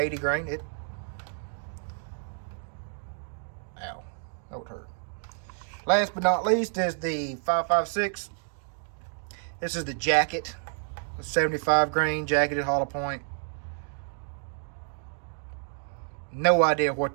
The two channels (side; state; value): left; silent; 58 dB below the other